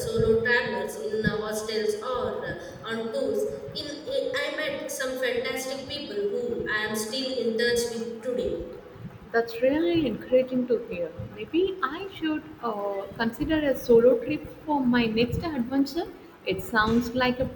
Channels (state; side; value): identical; both; correlation 1.00